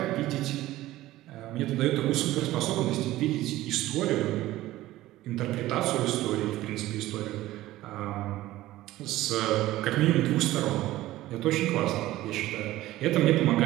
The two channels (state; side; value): quieter; left; 16.0 dB